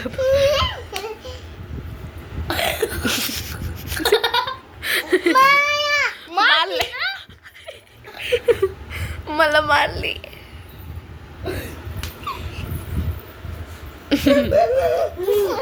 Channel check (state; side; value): identical; both; correlation 1.00